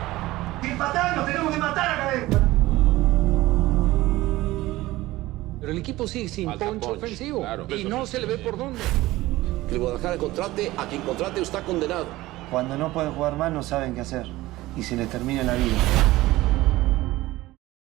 ¡Sin matar! ¡Nos tenemos que matar acá adentro! Pero el equipo sigue sin punch ofensivo, claro. Y no se le ve por dónde. Que el Guadalajara contrate a quien contrate está condenado. Cuando no pueden jugar más no saben qué hacer y se les termina la vida.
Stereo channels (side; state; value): left; quieter; 17.9 dB